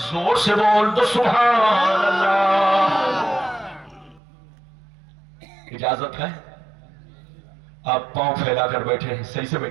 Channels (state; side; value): drops out; left; at 4.2 s